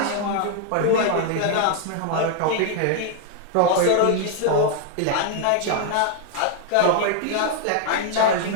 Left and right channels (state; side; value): different; both; correlation 0.00